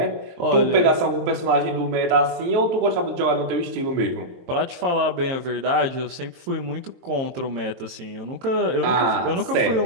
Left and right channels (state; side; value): late; left; 22 ms